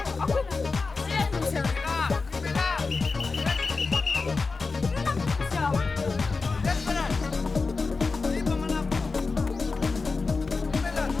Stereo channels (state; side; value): quieter; right; 4.2 dB